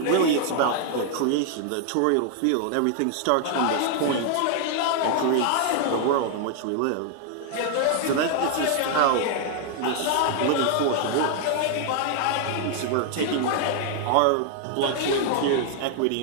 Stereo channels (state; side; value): different; both; correlation 0.00